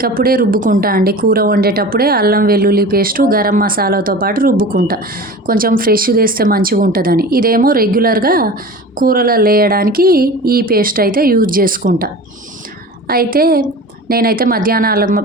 రుబ్బుకుంటా అండి. కూర వండేటప్పుడే అల్లం వెల్లుల్లి పేస్టు గరం మసాలాతో పాటు రుబ్బుకుంటా, కొంచెం ఫ్రెష్ చేస్తే మంచిగా ఉంటుందని. ఇదేమో రెగ్యులర్గా కూరలో వేయడానికి ఈ పేస్ట్ అయితే యూజ్ చేసుకుంటా. అయితే నేనైతే మధ్యాహ్నాలు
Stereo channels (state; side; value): normal; both; correlation 0.36